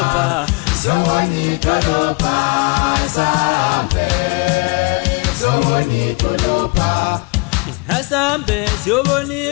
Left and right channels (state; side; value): quieter; right; 28.9 dB